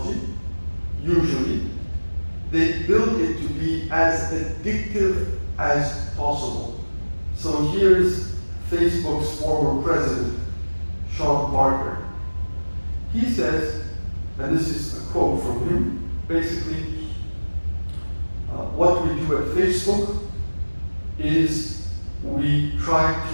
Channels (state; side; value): inverted; both; correlation -1.00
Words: usually, they build it to be as addictive as possible. So here's Facebook's former president, Sean Parker. He says, and this is a quote from him, basically, what we do at Facebook is we try